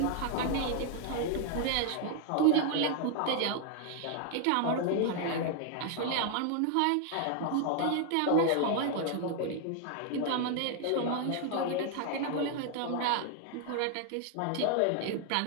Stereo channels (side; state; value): both; different; correlation 0.00